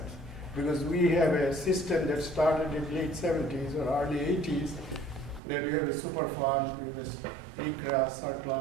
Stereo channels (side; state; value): left; drops out; at 5.4 s